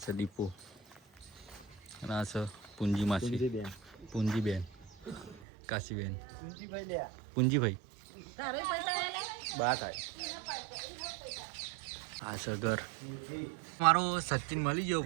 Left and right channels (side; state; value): left; drops out; at 5.4 s